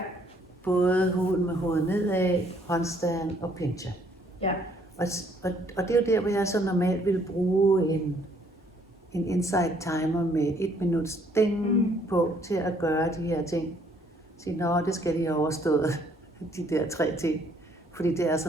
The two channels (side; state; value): both; normal; correlation 0.65